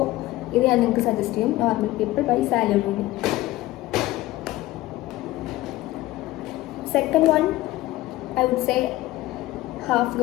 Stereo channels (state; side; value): quieter; right; 17.2 dB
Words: ഇത് ഞാൻ നിങ്ങൾക്ക് സജസ്റ്റ് ചെയ്യും, normal people by Sally Rooney. Second one I would say half